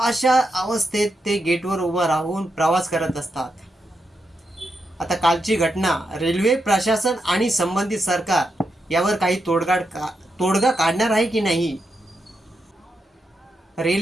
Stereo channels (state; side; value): normal; both; correlation 0.85